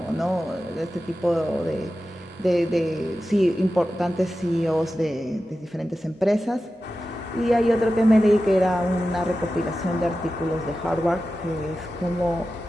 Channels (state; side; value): normal; both; correlation 0.93